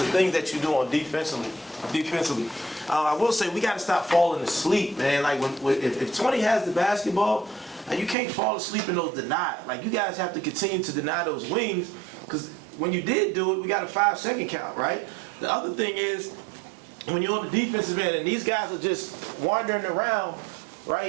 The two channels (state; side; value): drops out; left; at 8.2 s